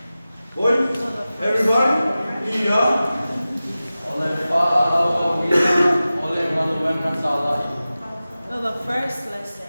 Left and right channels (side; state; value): both; inverted; correlation -0.95